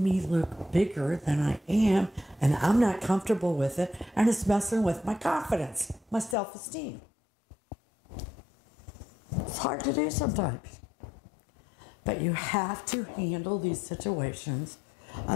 me look bigger than I am, and I'm not comfortable with it, and it's messing with my confidence, my self-esteem. It's hard to do sometimes. But you have to handle these situations,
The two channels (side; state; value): right; drops out; at 6.4 s